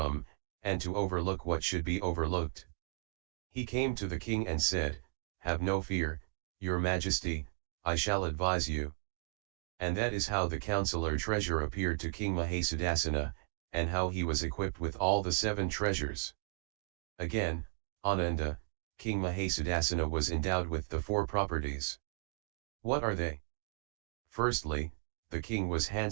and to overlook what should be overlooked. He came to the king and said, "Have no fear, your majesty, I shall advise you." And that is how the counselor treasure appeared to King Mahasudassana, and how he was equipped with all the 7 treasures. Again, Ananda, King Mahasudassana was endowed with the 4 properties. What are they? Firstly, the king was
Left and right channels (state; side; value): silent; left; 54 dB below the other